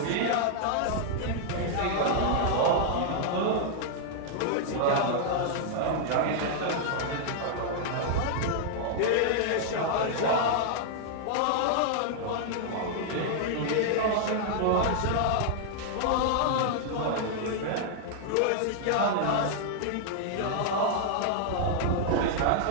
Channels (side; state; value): both; different; correlation -0.01